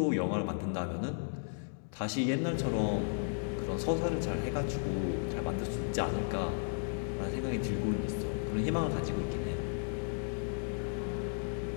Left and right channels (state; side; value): silent; right; digital silence